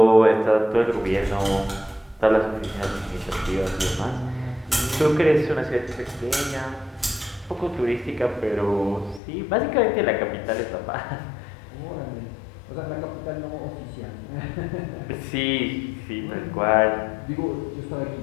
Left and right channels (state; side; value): drops out; right; at 9.2 s